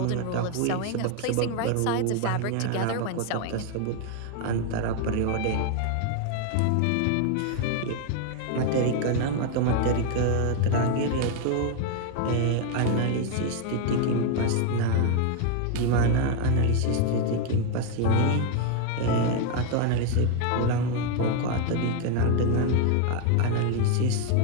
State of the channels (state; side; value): different; both; correlation 0.01